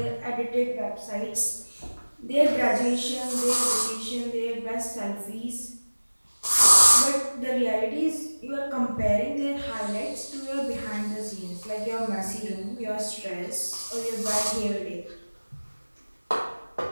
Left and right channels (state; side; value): inverted; both; correlation -1.00